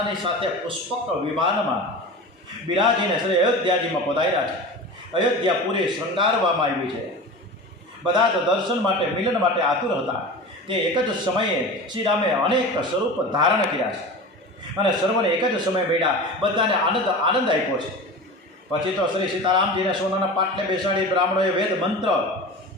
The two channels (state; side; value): normal; both; correlation 0.32